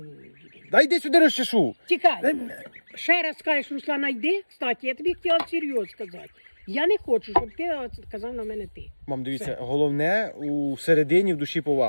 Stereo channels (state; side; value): inverted; both; correlation -1.00